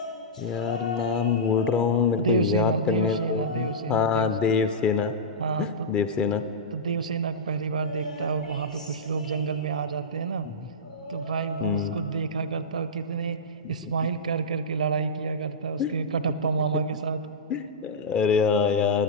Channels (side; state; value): both; normal; correlation -0.13